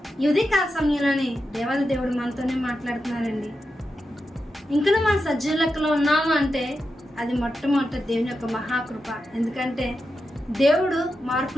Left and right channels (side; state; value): both; normal; correlation 0.89